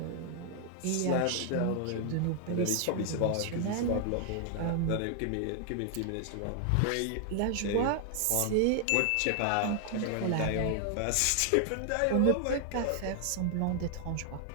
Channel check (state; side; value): different; both; correlation 0.00